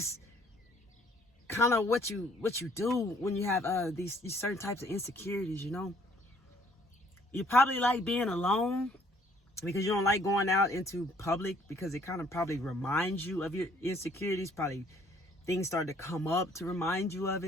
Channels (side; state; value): both; normal; correlation 0.61